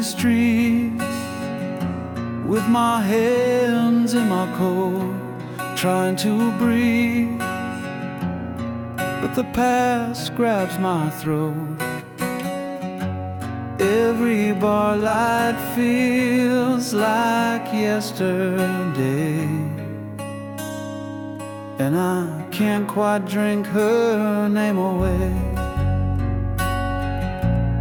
streets with my hands in my coat, trying to breathe, but the past grabs my throat. Every bar light feels like yesterday, and I can't quite drink her name away.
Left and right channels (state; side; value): identical; both; correlation 1.00